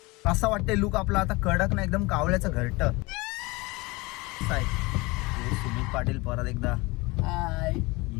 असं वाटतंय लुक आपला आता कडक ना एकदम कावळ्याचं घरट. सुमित पाटील परत एकदा.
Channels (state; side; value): quieter; right; 23.9 dB